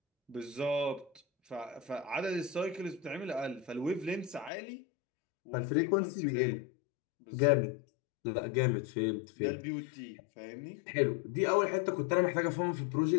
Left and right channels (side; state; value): right; drops out; at 4.5 s